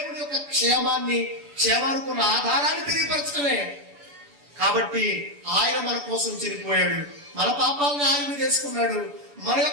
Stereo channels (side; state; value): left; late; 7.0 ms